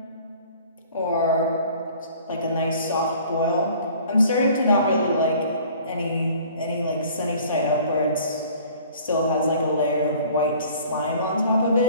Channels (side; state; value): both; inverted; correlation -0.51